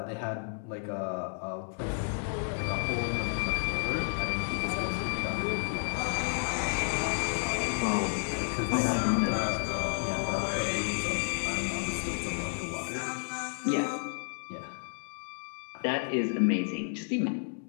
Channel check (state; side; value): silent; right; 57 dB below the other